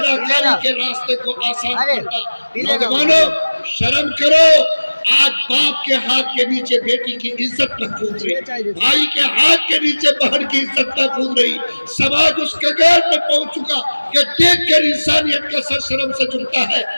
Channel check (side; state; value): both; inverted; correlation -1.00